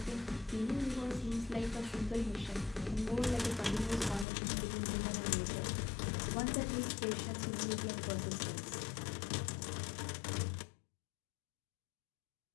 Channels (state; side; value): drops out; right; at 4.2 s